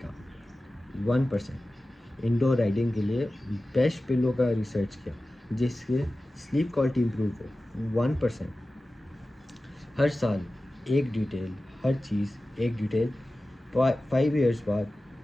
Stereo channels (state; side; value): normal; both; correlation 0.95